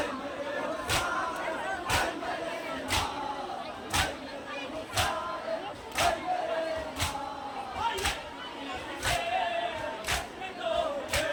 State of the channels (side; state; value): both; identical; correlation 1.00